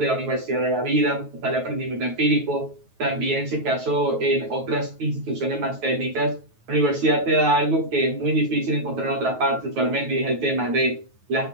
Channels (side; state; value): left; late; 9.3 ms